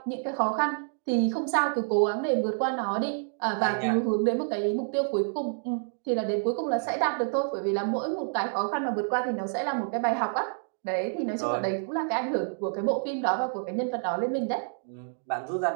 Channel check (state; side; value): silent; left; digital silence